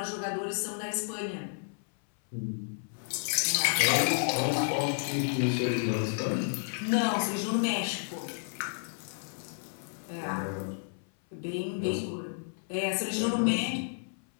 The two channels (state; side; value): silent; right; 57 dB below the other